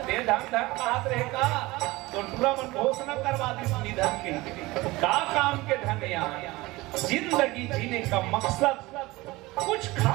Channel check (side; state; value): left; quieter; 20.8 dB